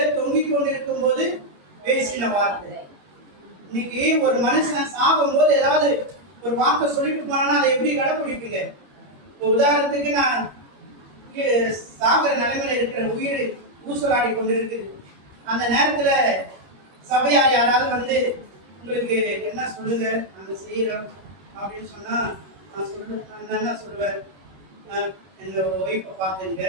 தொங்கிக் கொண்டிருக்கும் போது பேசின வார்த்தை. இன்னைக்கு ஒரு மனுஷன் சாகும் போது ஏதாவது ஒரு வார்த்தை சொல்லிட்டு போனா அதை எப்படி கடைபிடிப்பீங்க? உதாரணத்துக்கு நான் சாகிற நிலைமையில இருக்கிற உயிர் ஊசலாடி கொண்டிருக்கு. அந்த நேரத்துல சபையார் யாராவது வந்து உங்களுக்கு என்ன சொல்லுங்க நாங்க செய்யறோம் அப்படின்னு சொன்னா நான் என்ன சொல்லுவேன்? எங்க ஒய்ஃபை பார்த்துங்க,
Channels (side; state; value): left; late; 21 ms